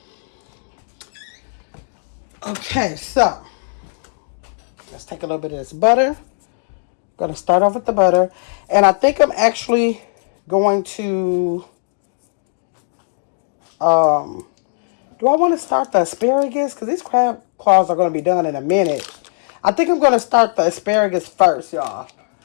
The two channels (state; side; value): silent; right; 67 dB below the other